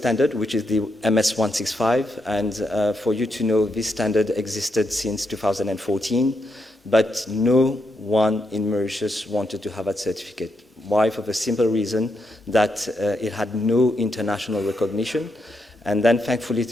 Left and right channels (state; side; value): normal; both; correlation 0.81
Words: which is the MS165, and for you to know, this standard existed since 2014, but no one in Mauritius wanted to have that certificate. Why? For the simple reason that it had no international recognition, and then thankfully